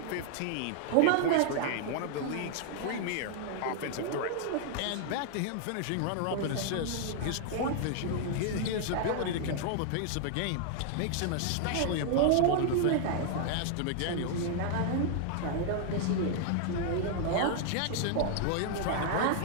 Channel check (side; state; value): both; different; correlation -0.01